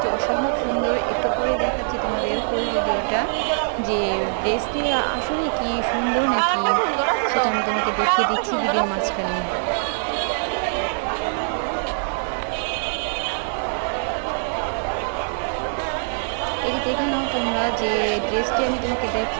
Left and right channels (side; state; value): left; silent; 63 dB below the other